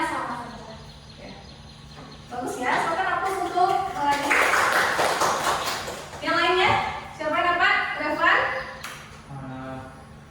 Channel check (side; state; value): both; identical; correlation 1.00